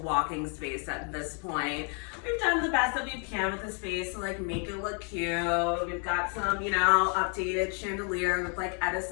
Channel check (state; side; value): quieter; right; 39.9 dB